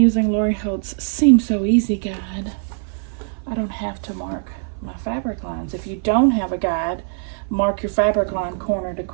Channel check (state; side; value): silent; left; 56 dB below the other